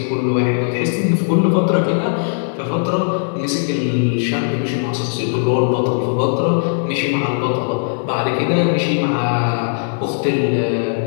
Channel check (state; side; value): silent; right; 67 dB below the other